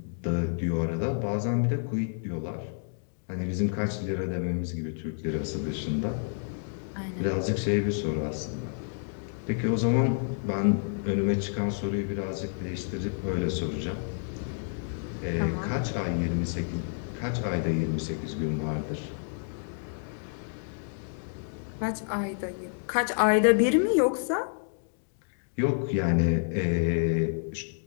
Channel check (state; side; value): silent; right; digital silence